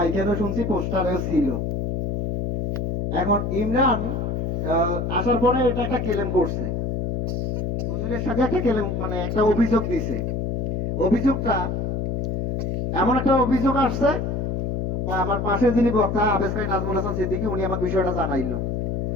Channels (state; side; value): noise; left; hum, 1 dB below the sound